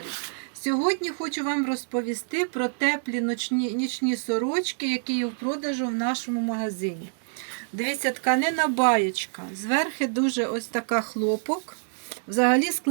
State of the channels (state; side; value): silent; left; digital silence